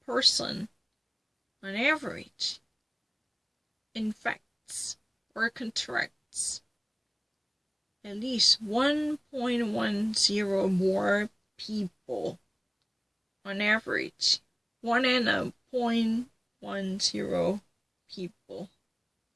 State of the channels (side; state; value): both; identical; correlation 1.00